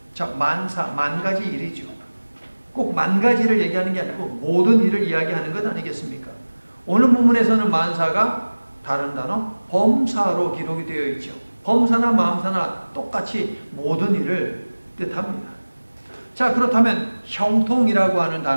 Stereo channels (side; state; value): both; inverted; correlation -1.00